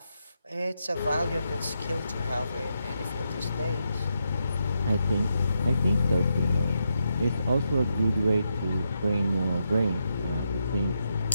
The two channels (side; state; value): both; inverted; correlation -0.82